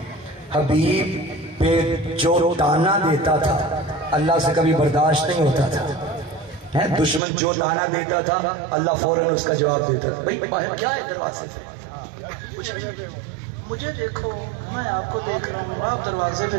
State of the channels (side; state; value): left; drops out; at 7.2 s